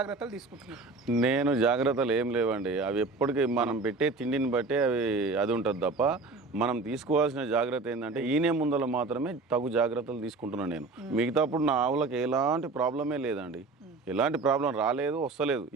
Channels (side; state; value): left; quieter; 3.7 dB